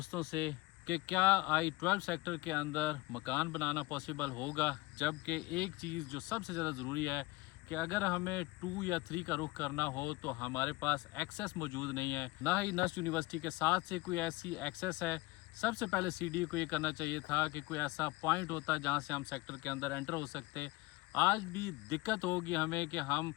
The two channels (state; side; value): quieter; right; 21.1 dB